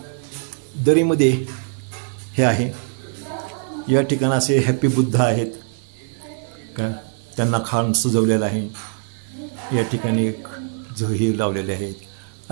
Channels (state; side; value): silent; left; 57 dB below the other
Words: दरीमध्ये हे आहे. या ठिकाणी असे हॅपी बुद्ध आहेत का, त्यांना खान सजवलेलं आहे. या ठिकाणी एक झही लावलेले आहेत.